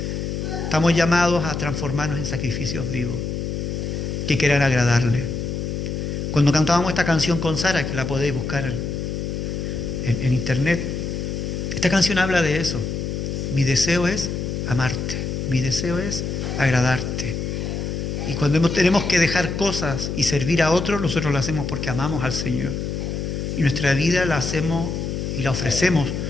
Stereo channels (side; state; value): left; noise; hum, 3 dB below the sound